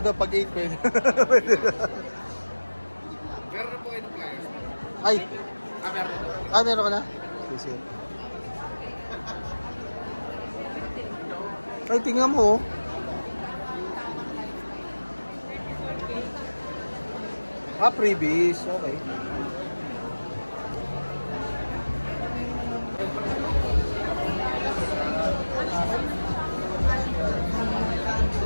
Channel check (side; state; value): both; inverted; correlation -1.00